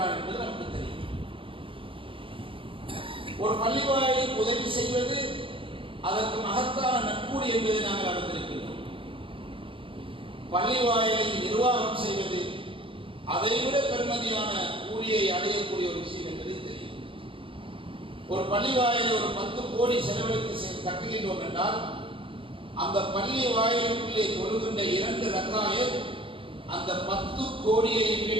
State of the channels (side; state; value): left; late; 0.25 ms